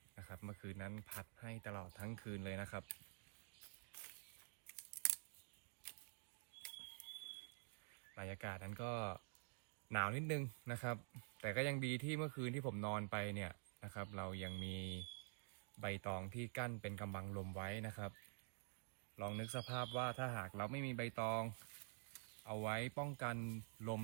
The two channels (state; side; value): silent; left; digital silence